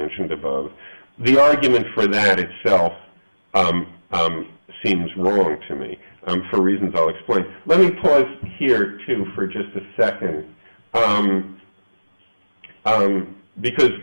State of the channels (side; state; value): both; inverted; correlation -1.00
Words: above, the argument for that itself seems wrong to me, for reasons I'll explain. Let me pause here, too, for just a second, because